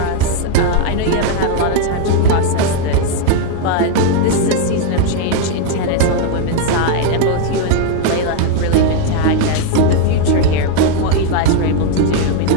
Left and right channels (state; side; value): different; both; correlation 0.00